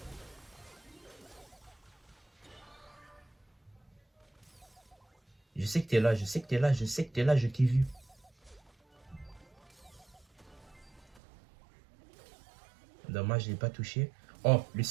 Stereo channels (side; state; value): left; drops out; at 11.2 s